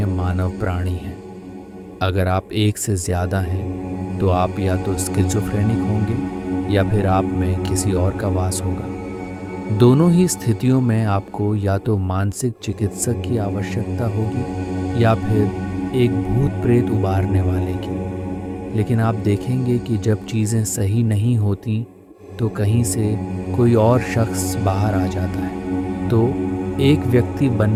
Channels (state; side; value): identical; both; correlation 1.00